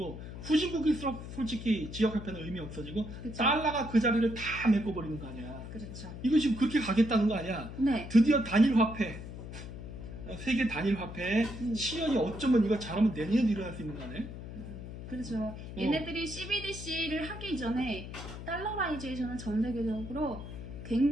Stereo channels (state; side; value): noise; left; hum, 10 dB below the sound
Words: 후진국일수록 솔직히 지역 화폐는 의미 없어지고 그쵸. 달러가 그 자리를 다 메꿔버리는 거 아니야. 그렇죠. 이거 지금 그렇게 가겠다는 거 아니야. 네. 드디어 단일 화폐 세계 단일 화폐 시연이 어쩌면 이거 잘하면 내년에도 일어날 수 있는 거 아니야? 그렇죠. 얘네들이 CBDC를 하기 전에 달러라이제이션은 전 세계적으로